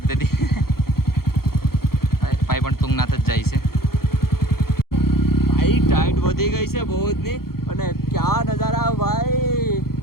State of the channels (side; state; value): right; late; 0.94 ms